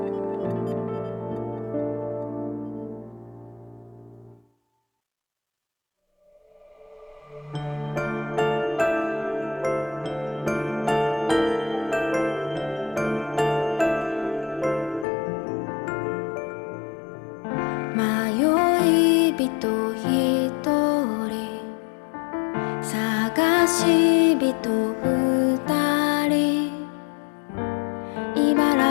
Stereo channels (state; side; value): drops out; right; at 15.1 s